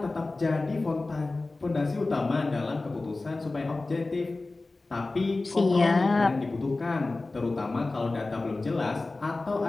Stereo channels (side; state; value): right; quieter; 3.3 dB